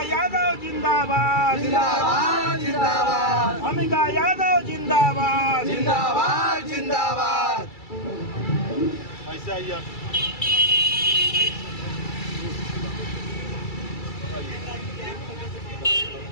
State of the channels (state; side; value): late; right; 2.3 ms